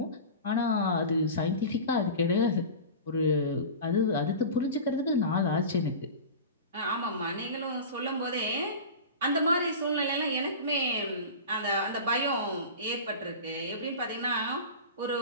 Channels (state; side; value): inverted; both; correlation -0.32